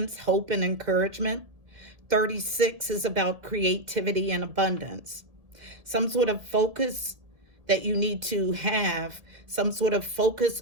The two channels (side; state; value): left; late; 1.7 ms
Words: hope, and encouragement. 36 is about creativity and abundance. Some sort of focus that you need to have, some sort of